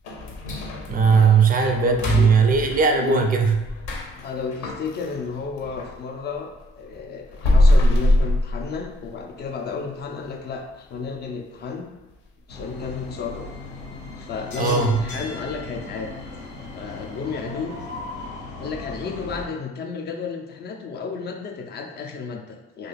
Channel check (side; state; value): both; normal; correlation 0.62